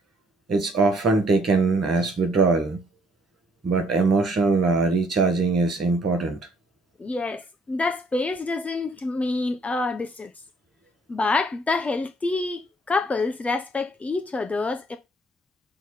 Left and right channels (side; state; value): both; normal; correlation 0.64